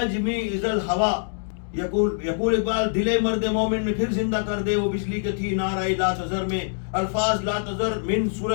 اذا الہوا. یقول اقبال دل مرد مومن میں پھر زندہ کر دے وہ بجلی کی تھی نعرہ لا تذر میں. الفاظ لا تذر من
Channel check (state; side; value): silent; right; digital silence